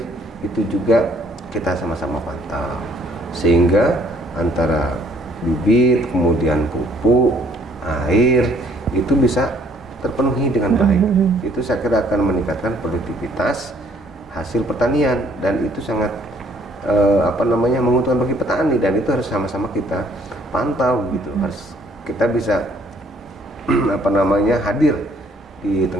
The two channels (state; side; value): normal; both; correlation 0.62